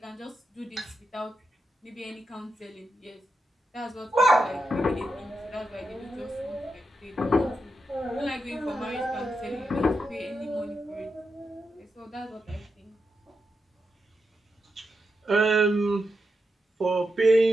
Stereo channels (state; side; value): normal; both; correlation 0.86